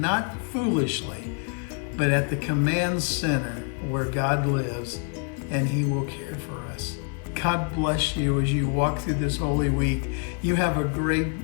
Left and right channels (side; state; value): right; quieter; 39.6 dB